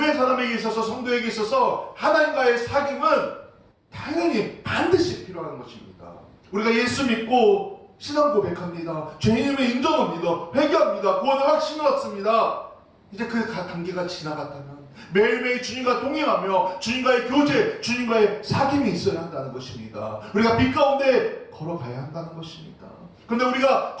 사람에게 있어서 성도에게 있어서 하나님과의 사귐은 당연히 반드시 필요한 것입니다. 우리가 예수 믿고 신앙 고백합니다. 죄인임을 인정합니다. 회개합니다. 구원의 확신을 얻습니다. 이제 그 단계가 지나갔다면 매일매일 주님과 동행하며 주님과의 교제, 주님과의 사귐이 있어야 한다는 것입니다. 우리가 빛 가운데 걸어가야 한다는 것입니다. 그런데 우리가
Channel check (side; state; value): both; identical; correlation 1.00